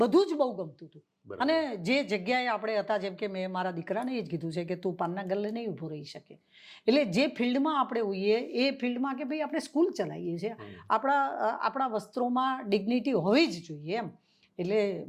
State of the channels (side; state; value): both; identical; correlation 1.00